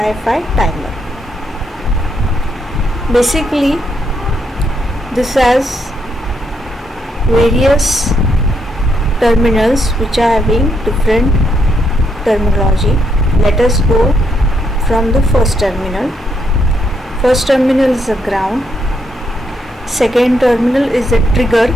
timer. Basically, this has various terminals which are having different terminology. Let us go from the first terminal. First terminal is the ground. Second terminal is the trigger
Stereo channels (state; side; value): normal; both; correlation 0.77